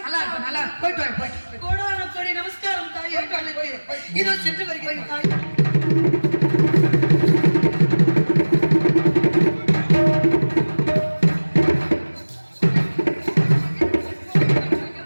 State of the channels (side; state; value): both; inverted; correlation -1.00